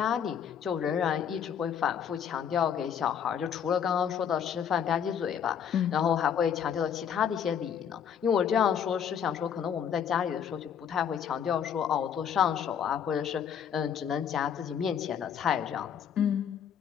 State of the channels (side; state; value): right; quieter; 8.2 dB